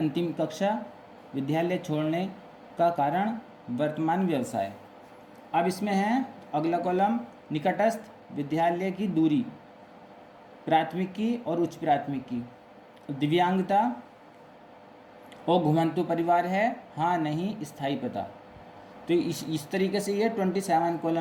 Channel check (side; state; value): both; identical; correlation 1.00